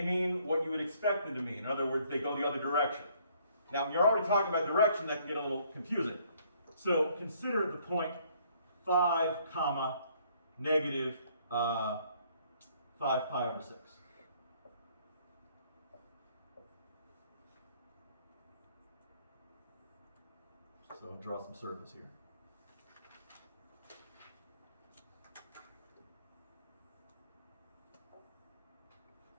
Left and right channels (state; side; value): inverted; both; correlation -0.64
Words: mean what you would expect them to mean. In other words, they go the other direction. Now, when you're already talking about direction, that can get a little confusing. So consider the point 5, comma, negative 5 pi over 6. So I'll draw some circles here.